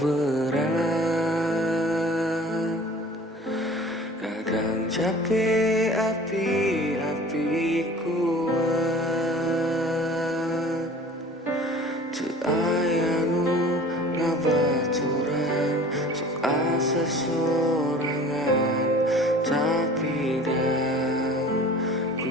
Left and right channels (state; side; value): normal; both; correlation 0.45